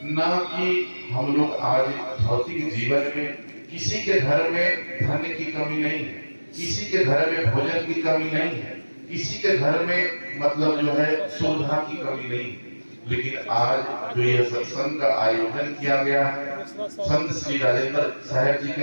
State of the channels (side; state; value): both; inverted; correlation -1.00